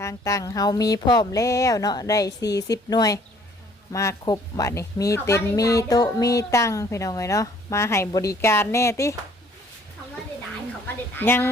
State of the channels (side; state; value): both; normal; correlation 0.59